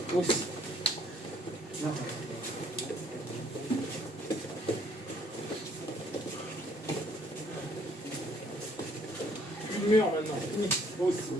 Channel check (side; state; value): both; normal; correlation 0.63